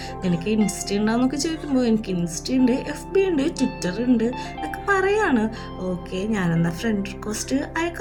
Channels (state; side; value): identical; both; correlation 1.00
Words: എനിക്ക് ഇൻസ്റ്റ ഉണ്ടോന്നൊക്കെ ചോദിക്കുമ്പോൾ എനിക്ക് ഇൻസ്റ്റ ഉണ്ട്, FB ഉണ്ട്, ട്വിറ്റർ ഉണ്ട് എന്നൊക്കെ പറയാണ്. ഓക്കെ ഞാനെന്നാ ഫ്രണ്ട് റിക്വസ്റ്റ്